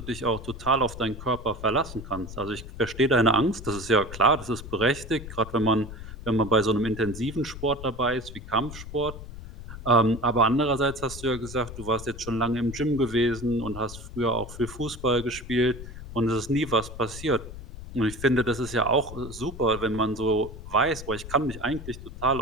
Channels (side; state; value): left; noise; rumble, 12 dB below the sound